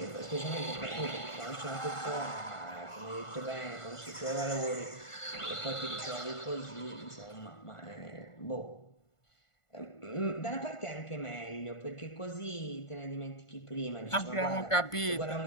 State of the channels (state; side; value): late; right; 1.5 ms